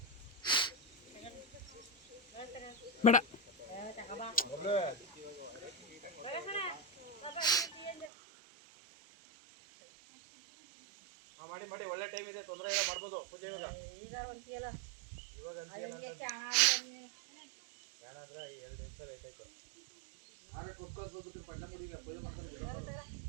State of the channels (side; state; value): left; drops out; at 8.1 s